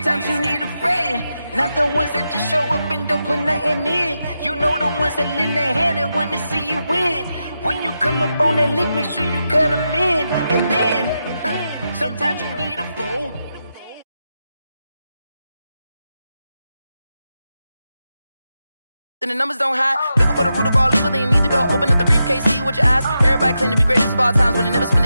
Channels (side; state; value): both; inverted; correlation -0.88